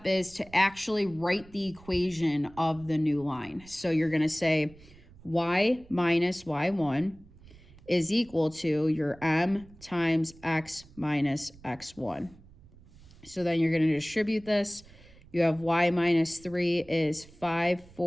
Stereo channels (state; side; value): noise; right; rumble, 23 dB below the sound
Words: is to actually write the equation of the new line. So you're going to say y minus y1 is equal to your m times x minus x1. So then you're going to distribute this. You have y minus 3 is